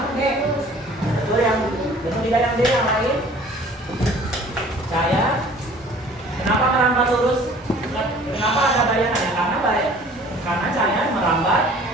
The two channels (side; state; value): both; normal; correlation 0.50